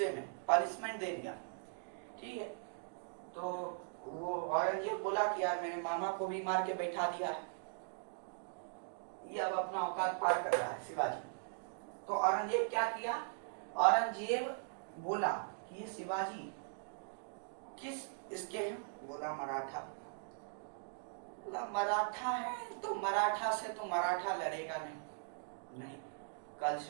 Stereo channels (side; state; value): left; silent; digital silence